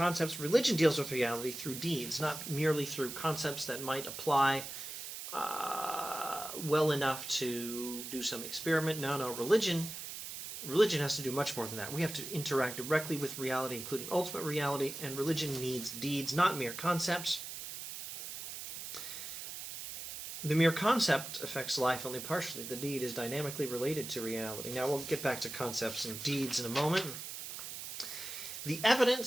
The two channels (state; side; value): noise; right; hiss, 8 dB below the sound